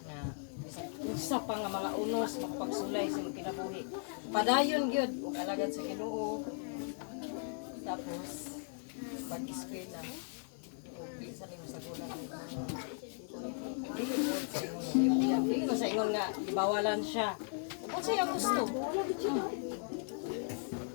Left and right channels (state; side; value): silent; right; 53 dB below the other